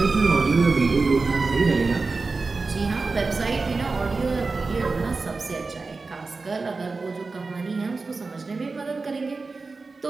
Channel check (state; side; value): quieter; left; 4.0 dB